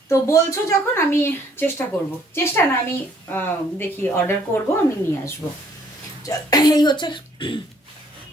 তো বলছো যখন, আমি চেষ্টা করব, চেষ্টা না আমি দেখি অর্ডার করব, আমি নিয়ে আসবো। এই হচ্ছে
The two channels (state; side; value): normal; both; correlation 0.62